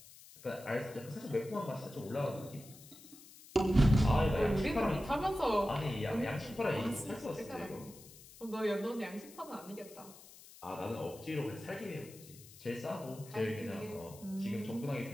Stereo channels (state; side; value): noise; left; hiss, 19 dB below the sound